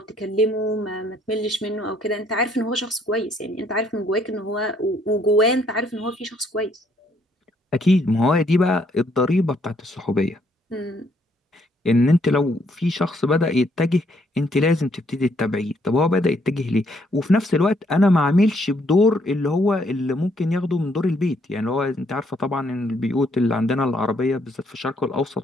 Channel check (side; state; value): both; normal; correlation 0.69